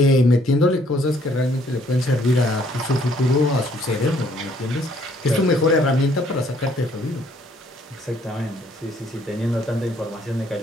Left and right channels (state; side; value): normal; both; correlation 0.64